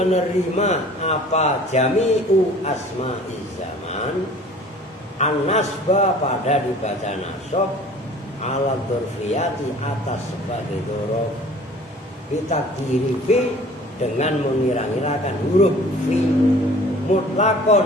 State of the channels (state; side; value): normal; both; correlation 0.48